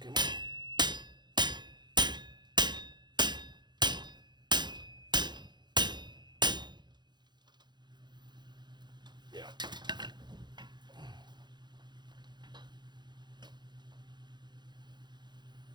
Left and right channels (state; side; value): late; left; 0.21 ms